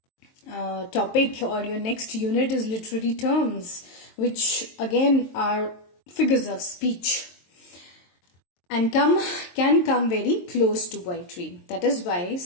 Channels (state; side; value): late; right; 23 ms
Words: topic or your next unit is literary terms, which again are figures of speech and can come very close to poetry. That is why